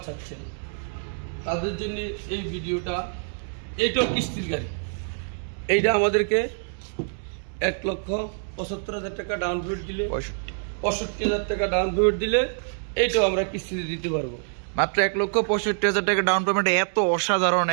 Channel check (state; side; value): silent; left; 61 dB below the other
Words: চাচ্ছেন তাদের জন্য এই ভিডিওটা। এইটাও কিস্তির গাড়ি, এইটা আমাদেরকে 1,75,000 টাকা ডাউন পেমেন্ট দিলে, 65,000 টাকা ডাউন পেমেন্ট দিলে এইটাও আমরা কিস্তিতে দিতে পারবো। মাত্র 1,65,000 টাকা ডাউন পেমেন্ট। এত অসাধারণ,